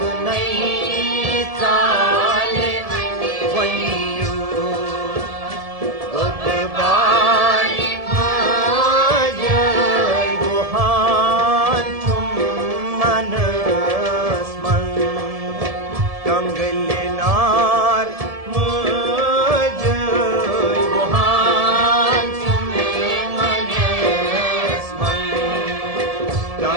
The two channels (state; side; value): late; left; 1.7 ms